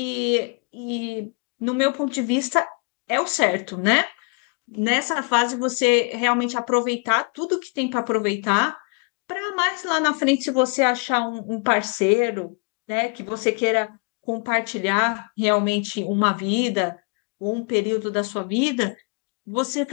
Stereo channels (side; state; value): right; quieter; 33.7 dB